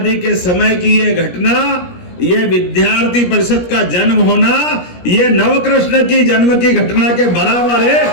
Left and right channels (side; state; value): right; late; 17 ms